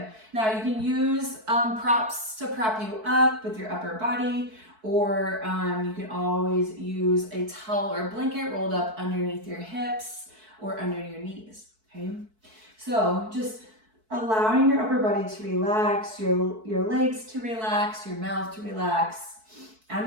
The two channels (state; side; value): late; left; 4.6 ms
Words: Now you can use props to prop you up with your upper body, or you can always use a towel or blanket rolled up underneath your hips or under your knees, okay? So just allowing your upper body to relax, your legs to relax, your mouth to relax. I'm